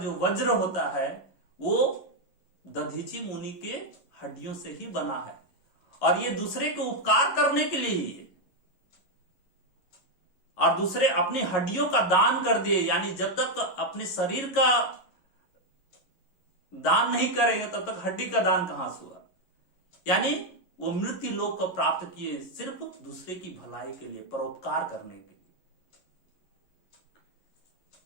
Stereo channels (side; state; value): right; late; 11 ms